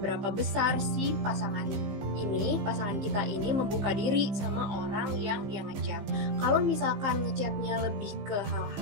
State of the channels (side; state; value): left; late; 15 ms